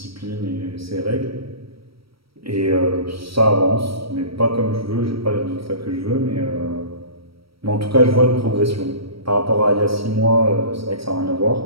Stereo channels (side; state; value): left; late; 0.75 ms